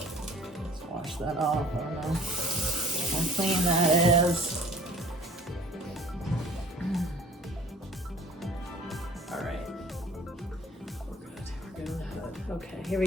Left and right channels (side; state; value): both; normal; correlation 0.50